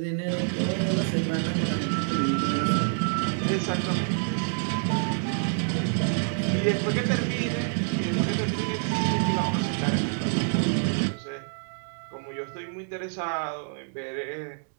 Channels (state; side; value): silent; left; 60 dB below the other